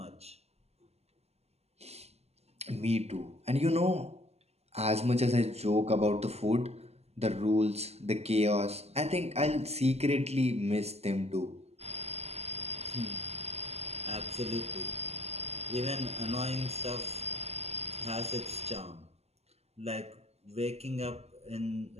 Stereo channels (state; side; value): late; left; 0.30 ms